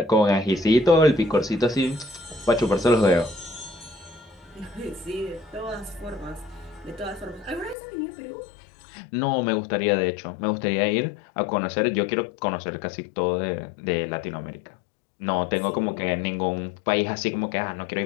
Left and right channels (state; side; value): drops out; right; at 7.8 s